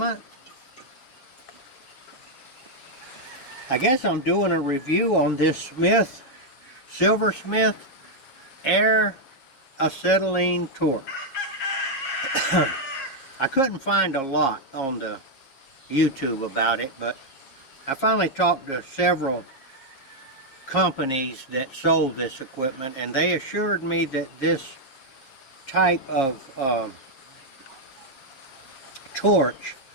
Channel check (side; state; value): right; late; 7.4 ms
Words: I guess I'm doing a review on this Silversmith Air Acetylene Torch. I couldn't find a lot on the YouTube about it, but I finally talked to several companies that sold this equipment, and they assured me that this type of torch